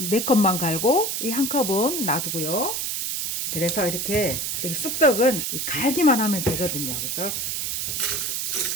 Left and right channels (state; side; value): noise; right; hiss, 2 dB below the sound